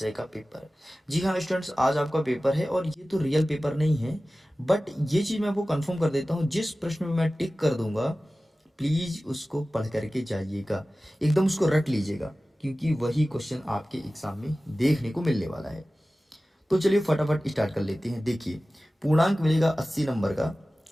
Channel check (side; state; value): both; normal; correlation 0.96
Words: का पेपर। जी हाँ स्टूडेंट्स, आज आपका पेपर है और ये तो रियल पेपर नहीं है, बट ये चीज़ मैं आपको कंफर्म कर देता हूँ, जिस प्रश्न में मैं टिक कर दूंगा प्लीज़ उसको पढ़ करके जाइएगा, एकदम उसको रट लीजिएगा, क्योंकि वही क्वेश्चन आपके एग्जाम में देखने को मिलने वाला है। तो चलिए फटाफट स्टार्ट कर लेते हैं। देखिए, पूर्णांक मिलेगा 80 नंबर का